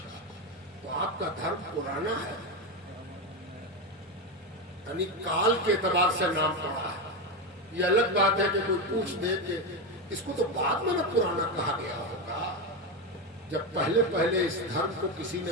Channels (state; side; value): normal; both; correlation 0.13